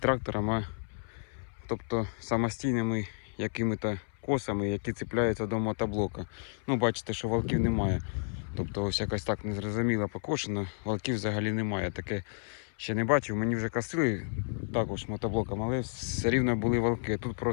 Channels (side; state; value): right; silent; 57 dB below the other